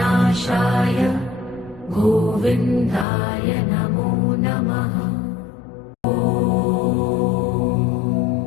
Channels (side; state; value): right; drops out; at 3.1 s